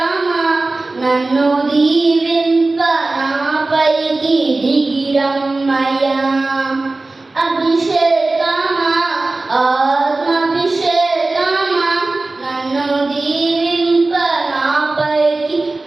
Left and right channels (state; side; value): quieter; left; 3.2 dB